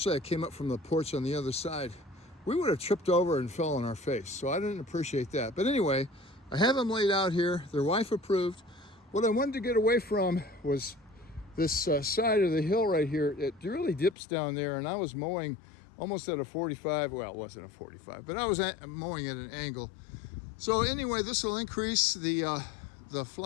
I came up from the porch on the other side, we would have tripped over and fell on our face. So I didn't appreciate that. But anyway, I have them laid out here. They're wife approved. What I wanted to get away from was this side of the hill right here. It really dips down there, and I was mowing almost at a 45. Well, it wasn't a 45, but I was mowing at an angle. So anyway, this will increase the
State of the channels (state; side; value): drops out; right; at 14.2 s